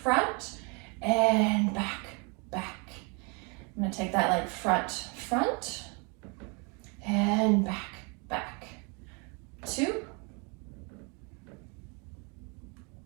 and back, back. I'm going to take that leg front, front, and back, back. 2.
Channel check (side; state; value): left; quieter; 32.7 dB